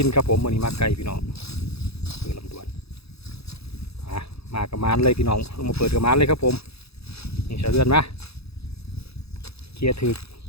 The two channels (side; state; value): right; late; 0.78 ms